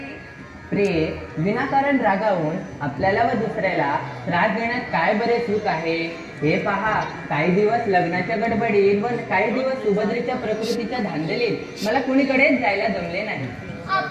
प्रिय, विनाकारण रागावून आपल्याला व दुसऱ्याला त्रास देण्यात काय बरे सुख आहे? हे पहा, काही दिवस लग्नाच्या गडबडीत व काही दिवस सुभद्रेच्या प्रकृतीच्या धांदलीत मला कुणीकडेच जायला जमले नाही.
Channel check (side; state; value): both; identical; correlation 1.00